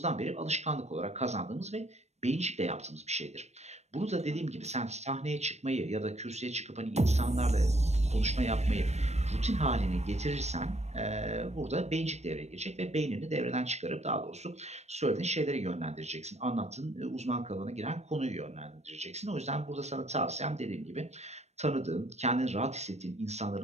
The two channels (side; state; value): left; late; 0.32 ms